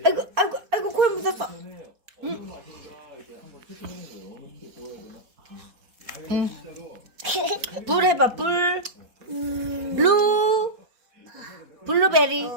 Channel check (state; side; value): late; left; 4.2 ms